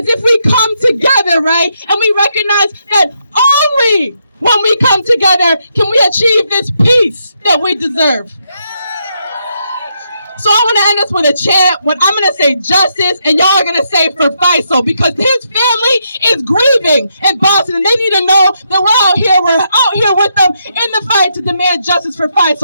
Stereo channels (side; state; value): both; inverted; correlation -0.79